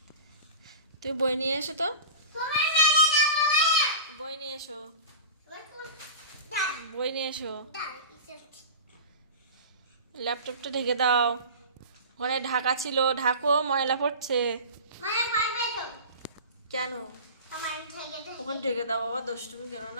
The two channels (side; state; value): both; inverted; correlation -0.33